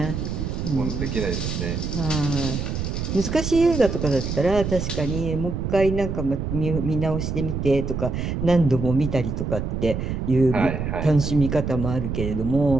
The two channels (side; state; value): right; noise; rumble, 3 dB below the sound